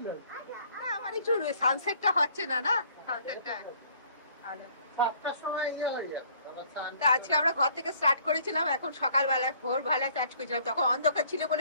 আমার একটু সানসেটটা হচ্ছে না, না সানসেটটা ভালো। আজকে আমরা ঘর থেকে স্টার্ট করেছিলাম, এখন সকালবেলা ভোরবেলা স্টার্ট করেছিলাম, তখন অন্ধকার ছিল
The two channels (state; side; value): inverted; both; correlation -0.59